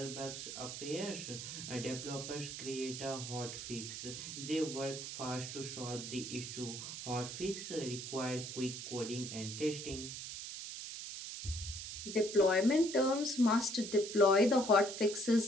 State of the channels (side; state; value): right; noise; hiss, 7 dB below the sound